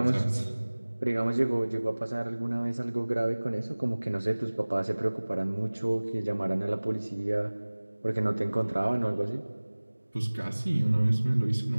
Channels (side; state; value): both; inverted; correlation -1.00